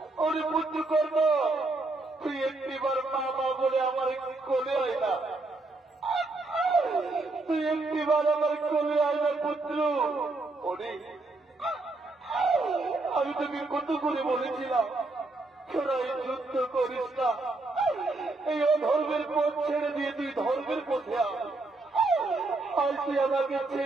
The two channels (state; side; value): quieter; left; 3.2 dB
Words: ওরে পুত্র কর্ম, তুই একটিবার মা মা বলে আমার কোলে হয় না, তুই একটিবার আমার কোলে হয় না পুত্র। ওরে আমি তোকে কত করে বলেছিলাম তোরা এই যুদ্ধ করিস না, এই অধর্মের পথ ছেড়ে দিয়ে তুই ধর্মের পথে আজ তুই আমাকে